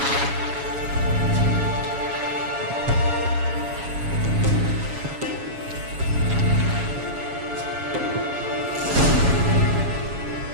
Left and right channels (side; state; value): left; late; 7.2 ms